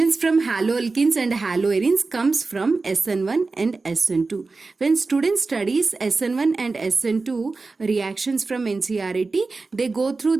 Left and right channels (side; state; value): left; quieter; 3.9 dB